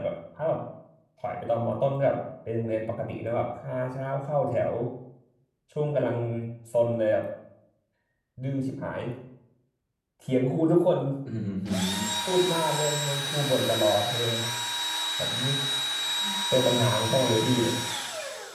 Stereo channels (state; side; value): identical; both; correlation 1.00